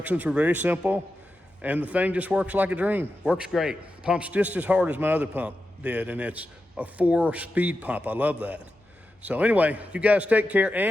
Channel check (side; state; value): both; normal; correlation 0.90